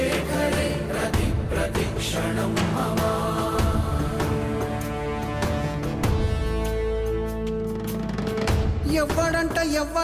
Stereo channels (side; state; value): both; identical; correlation 1.00